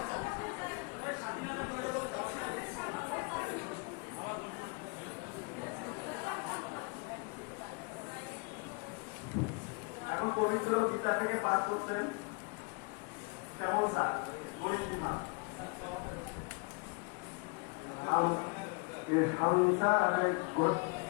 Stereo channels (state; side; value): quieter; right; 31.0 dB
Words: এখন পবিত্র গীতা থেকে পাঠ করছেন কেমন স্যার গরিমা।